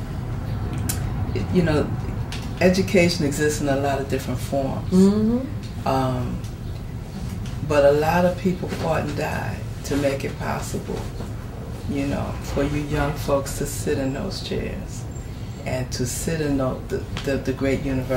you know, education exists in a lot of different forms. Mm-hmm. But a lot of people fought and died to make it possible, you know, for you young folks to sit in those chairs and to sit in the great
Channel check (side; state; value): both; identical; correlation 1.00